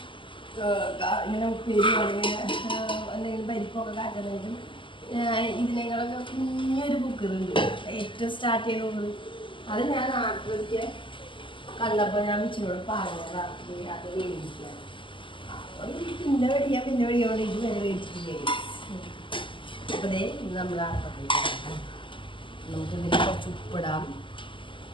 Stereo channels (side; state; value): right; late; 0.24 ms